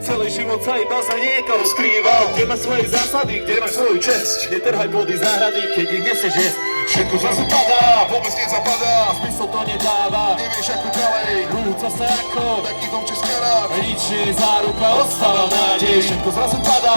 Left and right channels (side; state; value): both; inverted; correlation -1.00